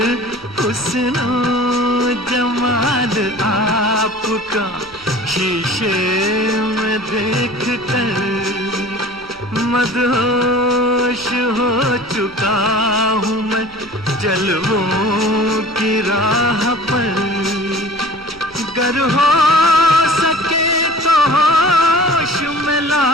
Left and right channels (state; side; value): noise; right; hum, 25 dB below the sound